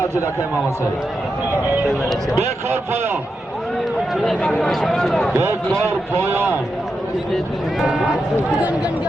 دکه امام حسین بکار پایان بکار پایان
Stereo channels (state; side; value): normal; both; correlation 0.87